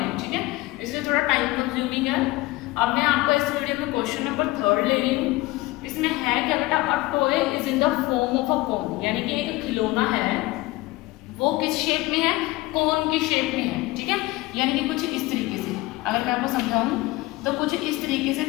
ठीक है, इसलिए थोड़ा टाइम कंज्यूमिंग है। अब मैं आपको इस वीडियो में क्वेश्चन नंबर 3 ले रही हूँ। इसमें है क्या बेटा, a toy is in the form of a cone, यानी कि एक खिलौना है, वो किस शेप में है, कोन की शेप में है, ठीक है, यानी कि कुछ इस तरीके से। अगर मैं आपको समझाऊं तो कुछ इस तरीके से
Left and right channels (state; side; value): quieter; right; 19.7 dB